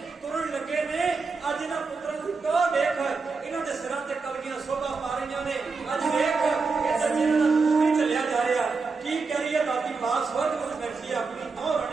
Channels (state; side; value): quieter; left; 4.5 dB